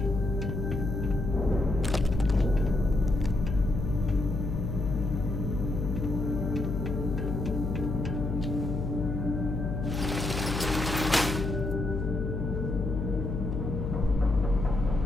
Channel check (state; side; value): noise; left; hum, 2 dB below the sound